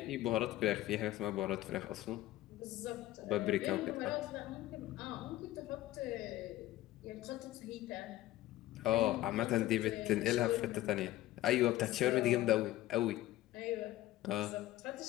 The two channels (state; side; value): quieter; right; 15.5 dB